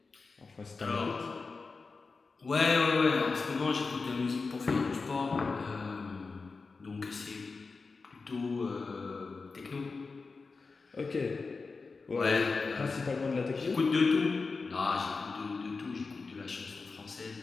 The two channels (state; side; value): quieter; right; 4.3 dB